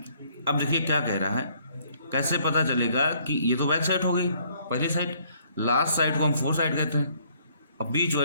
अब देखिए क्या कह रहा है, कैसे पता चलेगा कि ये तो बैक साइड हो गई पहली साइड, लास्ट साइड को हम फोर्थ साइड कहते हैं, अब बीच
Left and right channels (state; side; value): inverted; both; correlation -0.64